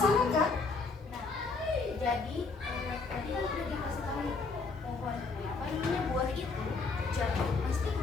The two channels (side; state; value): right; quieter; 4.2 dB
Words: kan? Jadi tadi kan udah dikasih tahu nih, pohon apa namanya, buah itu jatuh pasti ke